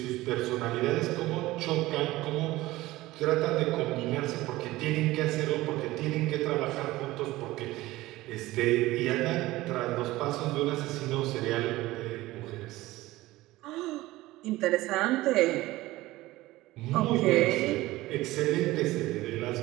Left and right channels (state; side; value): quieter; left; 18.0 dB